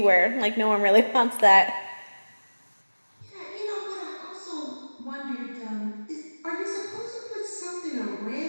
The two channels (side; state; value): both; inverted; correlation -1.00